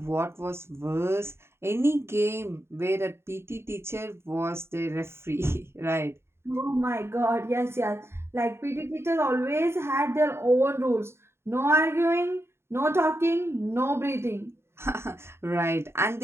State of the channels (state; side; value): late; left; 0.12 ms